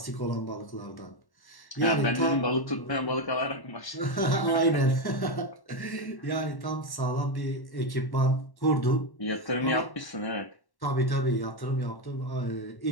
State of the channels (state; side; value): late; right; 1.1 ms